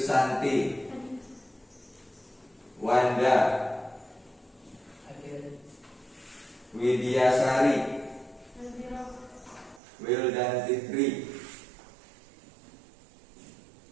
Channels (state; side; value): drops out; left; at 9.8 s